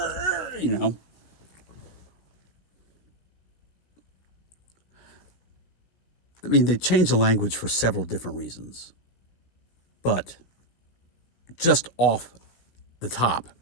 you know. I mean, they changed the language for several different reasons. But just off the top,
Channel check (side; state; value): right; late; 17 ms